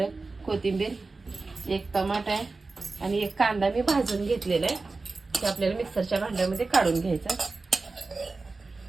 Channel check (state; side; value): quieter; left; 3.7 dB